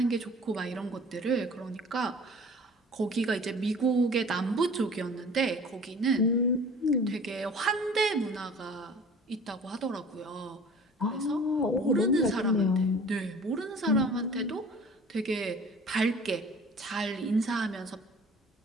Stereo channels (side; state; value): both; normal; correlation 0.46